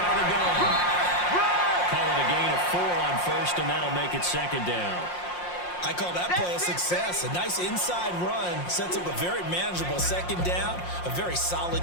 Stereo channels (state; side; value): late; right; 5.6 ms